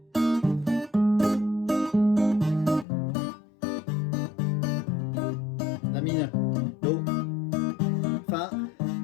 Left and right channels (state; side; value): drops out; right; at 2.9 s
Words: La mineur, Do, Fa, Mi.